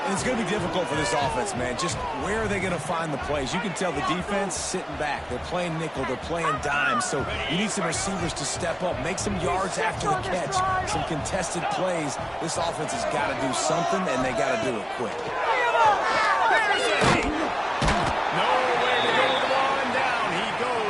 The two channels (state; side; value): identical; both; correlation 1.00